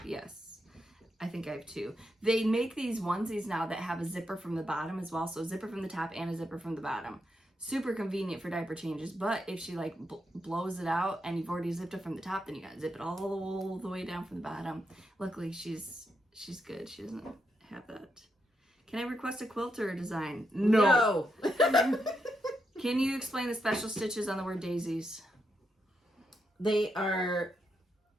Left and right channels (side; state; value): both; normal; correlation 0.82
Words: Yes, I think I have 2. They make these onesies now that have a zipper from the bottom as well. So a zipper from the top and a zipper from the bottom. Super convenient for diaper changes. But if she like blows it out and you've already zipped it from the top, then you gotta zip it all the way down from the bottom. Luckily, she's good. She doesn't have that. Can I request a quilter design? No. Can you explain the special stitches on the word daisies? They are